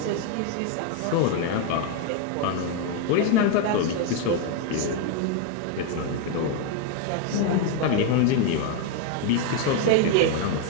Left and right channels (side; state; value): both; different; correlation 0.01